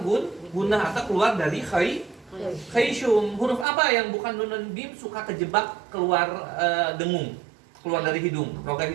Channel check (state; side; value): drops out; left; at 3.7 s